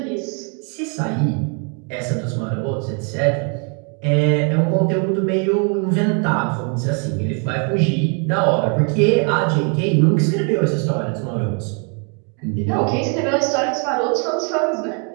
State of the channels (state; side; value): quieter; left; 38.3 dB